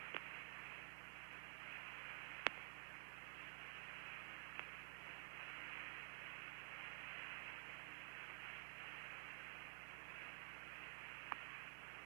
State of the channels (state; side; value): silent; left; digital silence